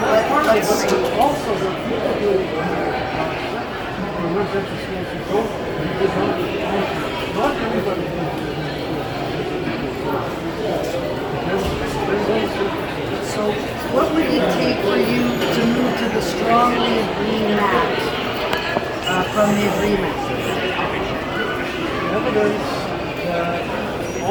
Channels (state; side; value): identical; both; correlation 1.00